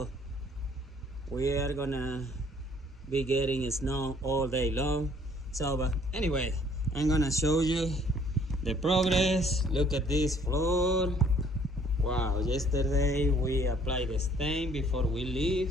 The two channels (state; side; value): normal; both; correlation 0.60